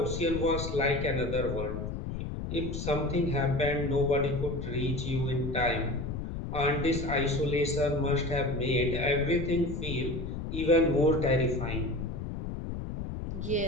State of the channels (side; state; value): left; noise; rumble, 5 dB below the sound